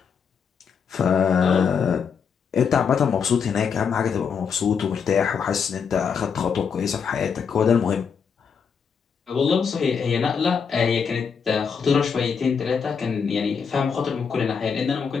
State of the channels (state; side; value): quieter; right; 6.4 dB